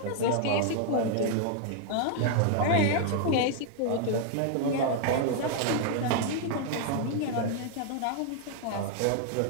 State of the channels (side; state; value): both; different; correlation 0.00